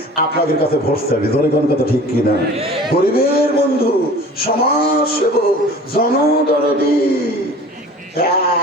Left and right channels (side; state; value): both; normal; correlation 0.43